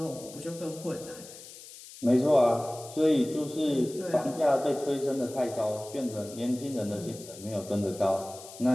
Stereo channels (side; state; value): left; noise; hiss, 16 dB below the sound